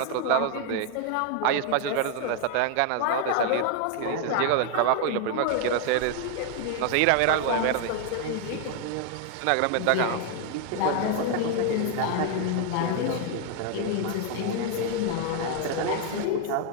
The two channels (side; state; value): both; different; correlation 0.00